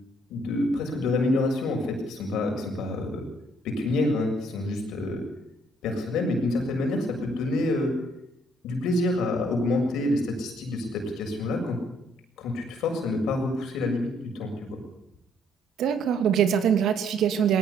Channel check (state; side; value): normal; both; correlation 0.66